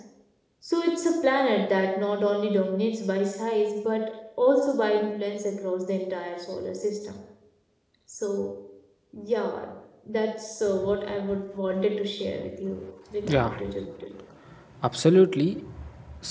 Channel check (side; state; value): both; identical; correlation 1.00